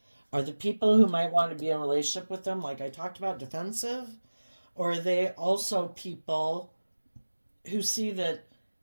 Are the people who might want to be in a relationship with them, like I talked about, defensive? Or are they also people who see that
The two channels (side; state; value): both; inverted; correlation -1.00